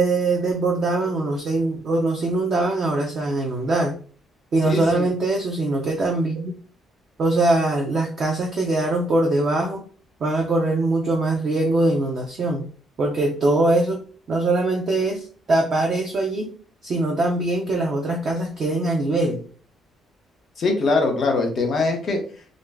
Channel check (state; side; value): normal; both; correlation 0.72